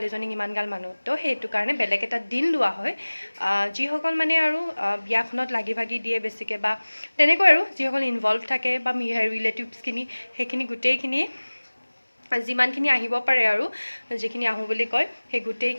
ইমানগাল মানুহ, তো সেইটো কাৰণে বেলেগ এটা দিন লোৱা হয়। যিসকল মানে আৰু বিয়াখনত লাগি ভাগি দিয়ে বেছিকৈ বা তেনেকৈ আৰু যিসকল ইনভলভ থাকে বা ৰিলেটিভছখিনি সেইখিনি গোটেইখিনি যিমানখিনি আহিব পাৰে আৰু যিখিনি আহোঁ বুলি কয় সেই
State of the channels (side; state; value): both; inverted; correlation -1.00